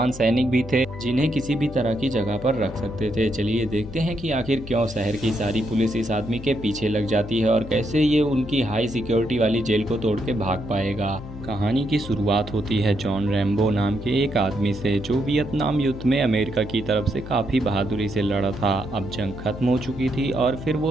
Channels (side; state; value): left; noise; hum, 13 dB below the sound